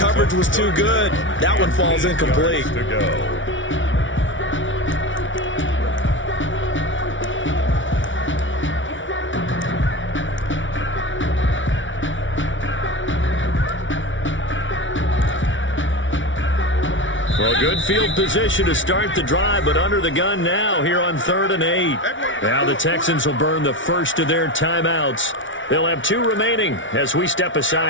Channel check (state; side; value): late; right; 0.56 ms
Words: was too good. That one falls incomplete. To go. Well, good field position to start the drive, but under the gun now here on 3rd and 8. Now the Texans will burn the first of their timeouts. They'll have 2 remaining as we step